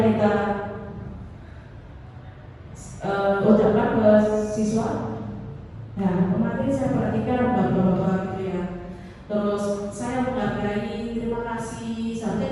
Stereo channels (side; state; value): both; identical; correlation 1.00